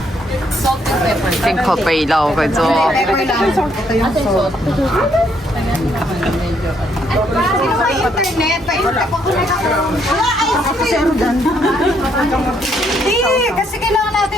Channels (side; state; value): both; normal; correlation 0.71